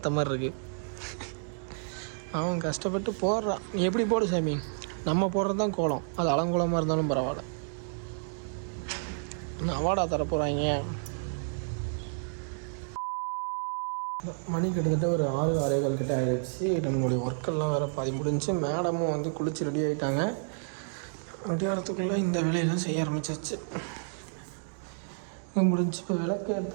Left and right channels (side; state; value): left; silent; digital silence